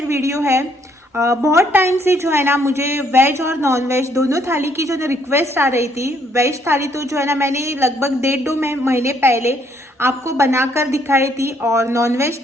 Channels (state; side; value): normal; both; correlation 0.68